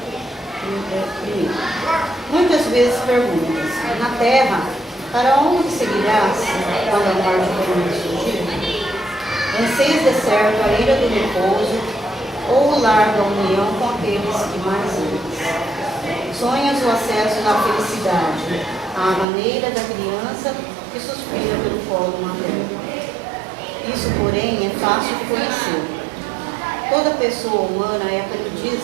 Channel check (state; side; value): drops out; left; at 19.2 s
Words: Muitas vezes perguntas: na terra, para onde seguirás quando a morte for surgir? Anseias de certo a ira do repouso ou o lar da união com aqueles que mais amas? Sonhas o acesso à felicidade, à maneira da criança que suspira pelo colo materno. Isso, porém, é fácil de conhecer. Toda pessoa humana é